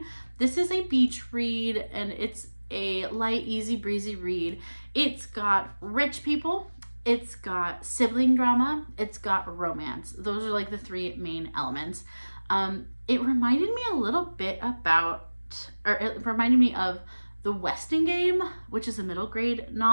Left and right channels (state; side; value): inverted; both; correlation -1.00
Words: This is a beach read, and it's a light, easy breezy read. It's got rich people, it's got sibling drama, it's got romance. Those are like the three main elements. It reminded me a little bit it reminded me of The Westing Game, which is a middle grade